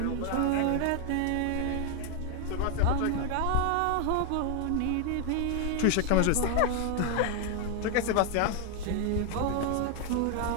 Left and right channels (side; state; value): both; different; correlation 0.00